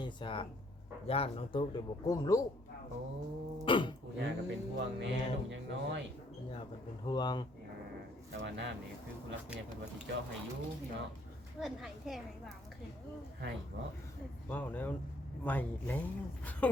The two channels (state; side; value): normal; both; correlation 0.65